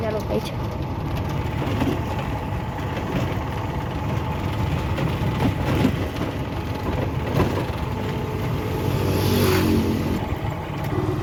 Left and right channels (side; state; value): both; identical; correlation 1.00